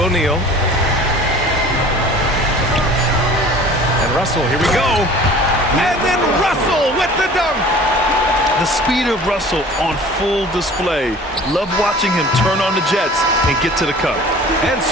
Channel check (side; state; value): both; normal; correlation 0.45